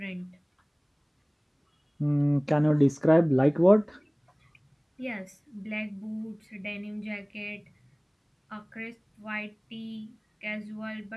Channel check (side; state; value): both; identical; correlation 1.00